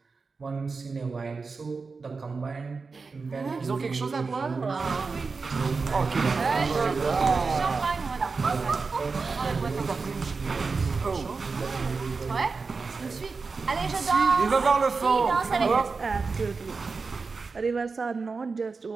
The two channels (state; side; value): quieter; left; 4.5 dB